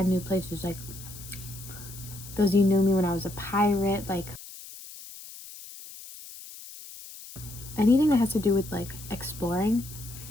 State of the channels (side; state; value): left; noise; hiss, 15 dB below the sound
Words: new places. Like those of you knew me when I was a pirate, like anything that has to do with like exploring.